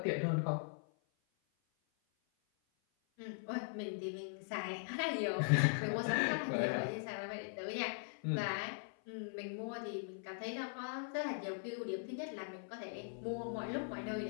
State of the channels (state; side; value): silent; right; 51 dB below the other